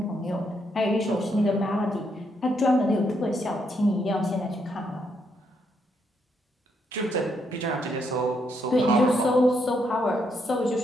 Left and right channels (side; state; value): both; normal; correlation 0.76